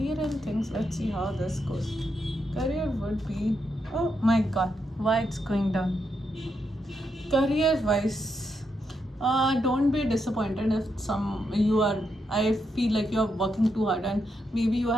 and things. Let's see how this goes. Career would be, oh my god, why it's going down. Career wise, don't be disappointed if you are, I feel like you're working too hard and maybe you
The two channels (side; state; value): both; normal; correlation 0.82